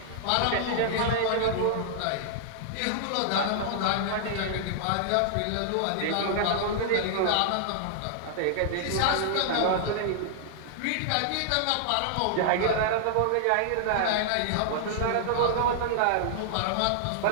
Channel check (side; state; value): both; different; correlation -0.01